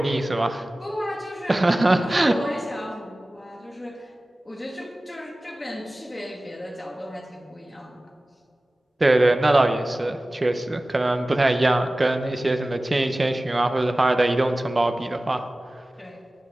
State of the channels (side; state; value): both; normal; correlation 0.97